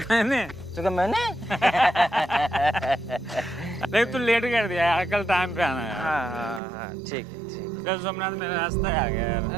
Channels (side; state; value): left; drops out; at 6.6 s